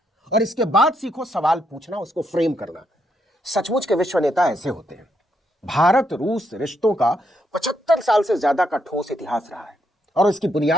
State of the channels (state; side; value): normal; both; correlation 0.77